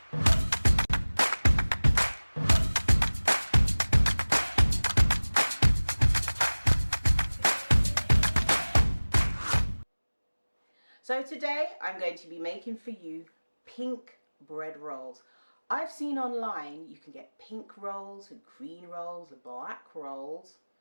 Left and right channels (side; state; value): both; inverted; correlation -1.00